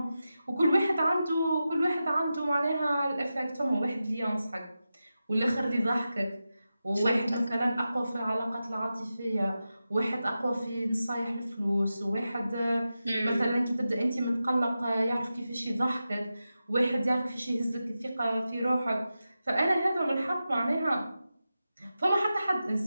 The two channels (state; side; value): inverted; both; correlation -0.92